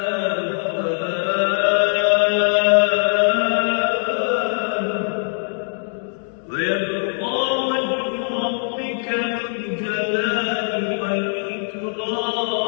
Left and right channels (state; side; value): silent; right; digital silence